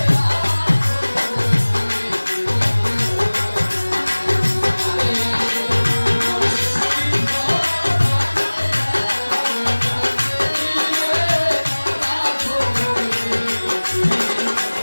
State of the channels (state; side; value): inverted; both; correlation -1.00